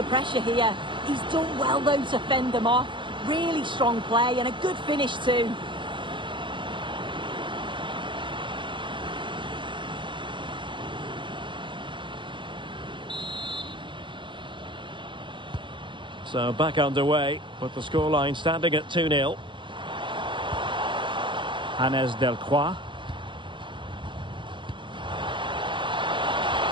pressure here. He's done well, though, to fend them off. Really strong play and a good finish, too. So back underway, with the scoreline standing at 2-0. Hannes Delcroix.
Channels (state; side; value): late; left; 0.23 ms